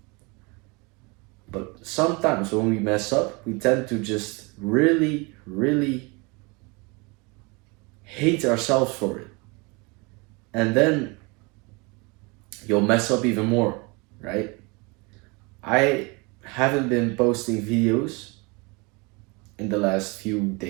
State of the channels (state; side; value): quieter; left; 28.3 dB